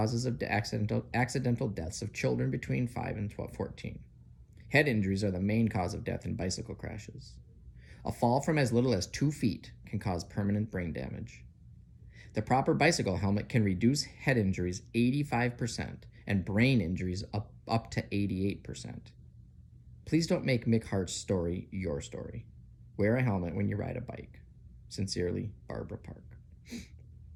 of accidental deaths of children between 5 and 14. Head injuries are the main cause of death in bicycle crashes. A fall from as little as 2 feet can cause permanent brain damage. The proper bicycle helmet can reduce head injuries 85% and brain injuries up to 88%. Please don't make Mick Hart's story your story. Wear a helmet when you ride a bike. Sincerely, Barbara Park.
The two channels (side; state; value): both; identical; correlation 1.00